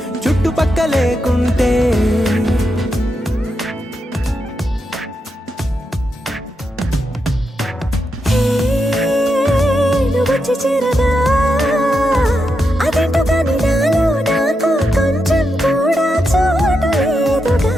చుట్టుపక్క లేకుంటే హే నువ్వు వచ్చి చేరగా అదేంటో కానీ నాలో నాకు కొంచెం కూడా చోటు లేదుగా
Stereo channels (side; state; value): both; normal; correlation 0.85